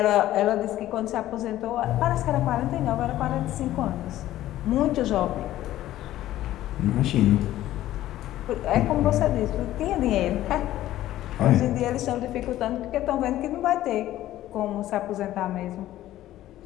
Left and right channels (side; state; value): right; quieter; 14.1 dB